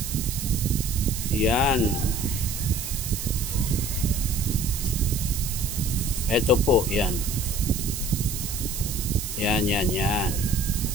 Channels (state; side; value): noise; right; hiss, 6 dB below the sound